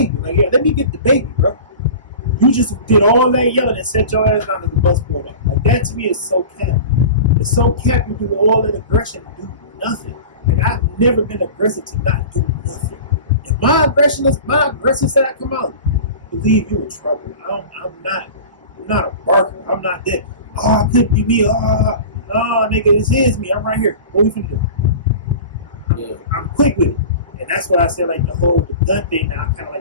Like, yeah, let me get the baby, bro. You just did all that yelling and set your ass down as the bus pulled up. Like, that to me is so cap. It's so cap you do all that aggression and do nothing. And I've never been aggressive to not do nothing. If my aggressive side come out, believe you in trouble. I'm not a barker. I'm not that. Oh, it couldn't be me. Oh, no, nigga, this is me. I'm right here. What we finna do? Yeah. I'm quick with it. And that's what I said, like, the gun thing, now I kind of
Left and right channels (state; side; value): inverted; both; correlation -0.36